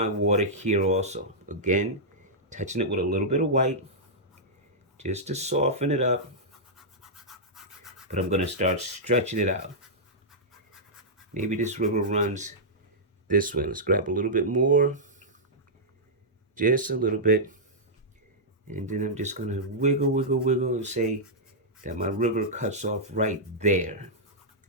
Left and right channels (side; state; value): both; normal; correlation -0.10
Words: water here also. Again, touching it with a little bit of white just to soften it up. But I'm going to start stretching it out. Maybe this river runs this way. Let's grab a little bit more. Just a little bit. And then I'm just going to wiggle, wiggle, wiggle and say that my river cuts off right there.